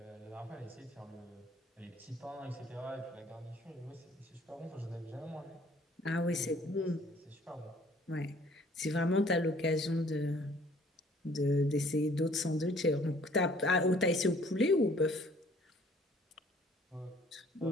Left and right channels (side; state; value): both; normal; correlation 0.57